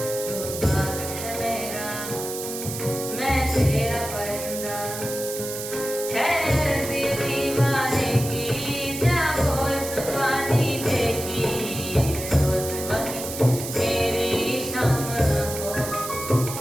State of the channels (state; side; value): noise; right; hiss, 8 dB below the sound